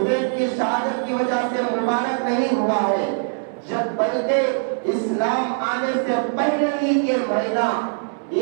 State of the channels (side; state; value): left; silent; digital silence